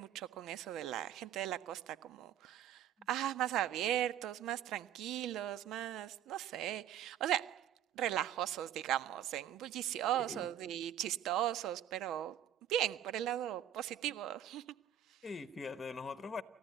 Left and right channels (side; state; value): left; quieter; 10.3 dB